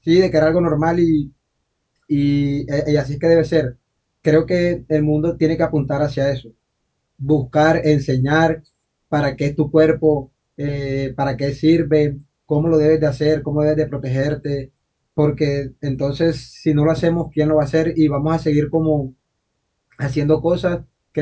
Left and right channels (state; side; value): identical; both; correlation 1.00